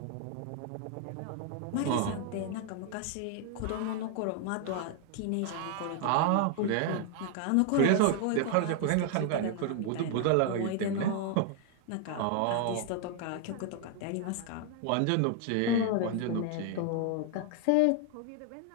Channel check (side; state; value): both; different; correlation 0.00